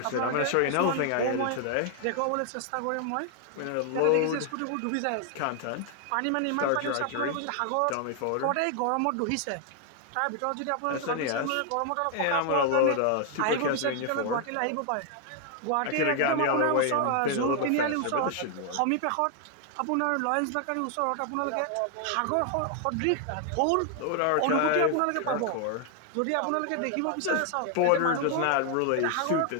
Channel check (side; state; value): both; different; correlation 0.00